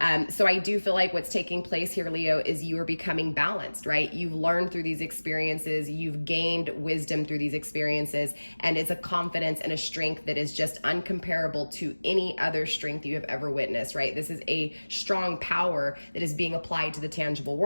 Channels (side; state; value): both; inverted; correlation -1.00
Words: So I do feel like what's taking place here, Leo, is you are becoming balanced, right? You've learned through these experiences, you've gained wisdom through these experiences, and it's a confidence and a strength that is just uncomparable to any other strength you have ever witnessed, right? This is a strong power that is being applied to the tangible